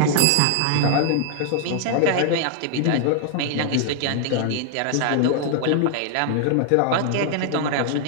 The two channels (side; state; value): both; different; correlation 0.00